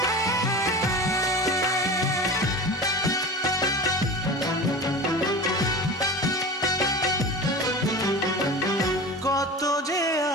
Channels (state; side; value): normal; both; correlation 0.33